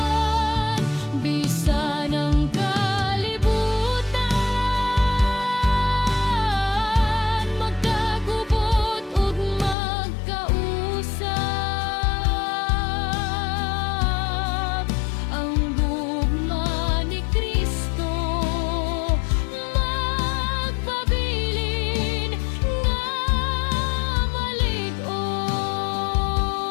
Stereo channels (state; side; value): drops out; right; at 9.8 s